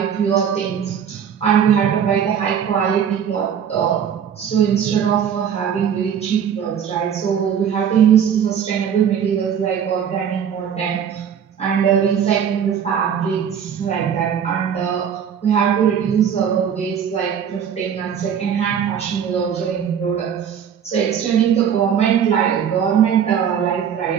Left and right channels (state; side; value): quieter; left; 8.2 dB